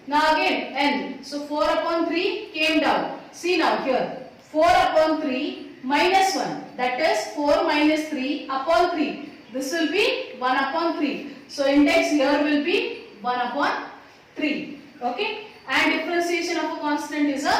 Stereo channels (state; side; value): identical; both; correlation 1.00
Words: Now again n. So 4 upon 3 came down. See now here. 4 upon 3 minus 1. That is 4 minus 3 upon 3. This will be 1 upon 3. So index here will be 1 upon 3. Okay. And differentiation of a constant is